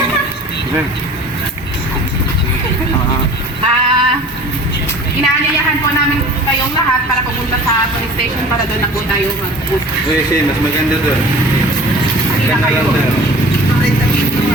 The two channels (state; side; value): normal; both; correlation 0.44